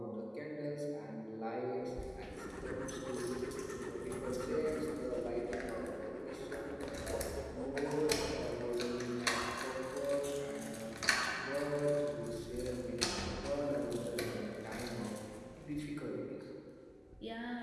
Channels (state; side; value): identical; both; correlation 1.00